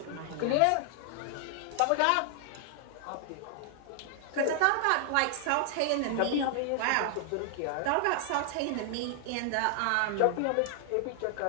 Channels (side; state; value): both; different; correlation 0.00